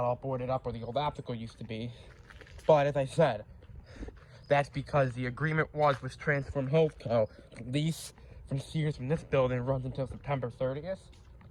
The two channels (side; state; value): both; identical; correlation 1.00